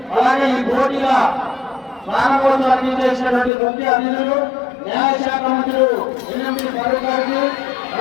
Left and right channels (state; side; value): drops out; right; at 3.5 s